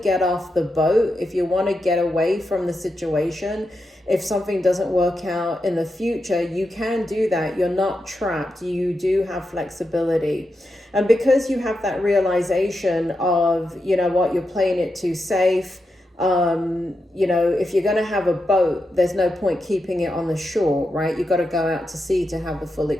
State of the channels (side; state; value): both; normal; correlation 0.87